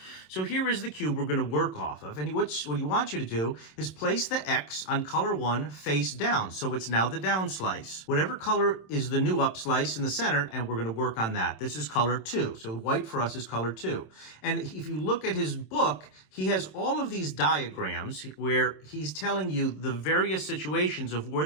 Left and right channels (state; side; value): late; right; 27 ms